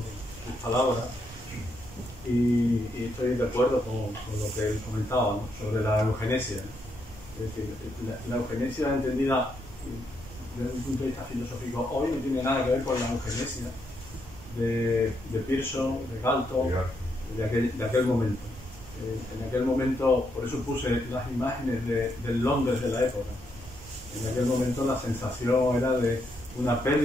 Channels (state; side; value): normal; both; correlation 0.78